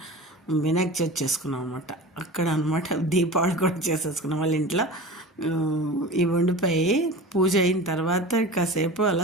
వినాయక చవితి చేసుకున్నాం అనమాట. అక్కడ అనమాట దీపావళి కూడా చేసేసుకున్నాం. వాళ్ళ ఇంట్లో ఈ వండిపోయి పూజ అయిన తర్వాత కాసేపు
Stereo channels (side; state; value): both; normal; correlation 0.34